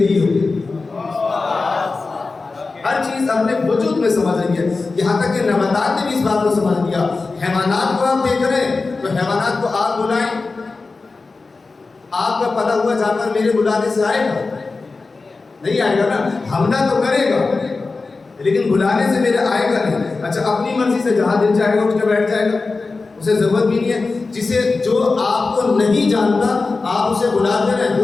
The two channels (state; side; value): quieter; right; 3.9 dB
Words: ہوں. ہر چیز اپنے وجود میں سمجھ رہی ہے. یہاں تک کہ نباتات نے بھی اس بات کو سمجھ لیا. حیوانات کو آپ دیکھ رہے ہیں تو حیوانات کو آپ بلائیں، آپ کا پلا ہوا جانور میرے بلانے سے آئے گا؟ نہیں آئے گا نا. حملہ تو کرے گا لیکن بلانے سے میرے آئے گا نہیں. اچھا اپنی مرضی سے جہاں دل جائے گا اٹھ کے بیٹھ جائے گا، اسے ضرورت بھی نہیں ہے. جسے جو آپ کو نہیں جانتا آپ اسے بلاتے رہے،